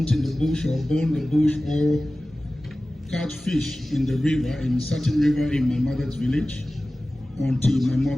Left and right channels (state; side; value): normal; both; correlation 0.97